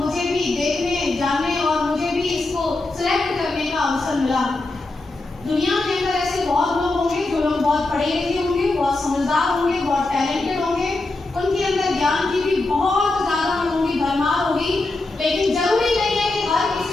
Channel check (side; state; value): right; quieter; 3.1 dB